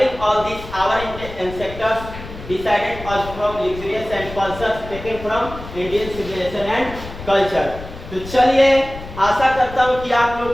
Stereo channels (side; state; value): left; noise; rumble, 13 dB below the sound